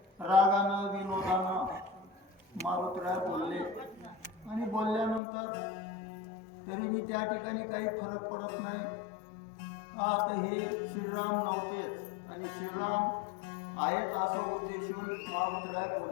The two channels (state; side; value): drops out; right; at 5.2 s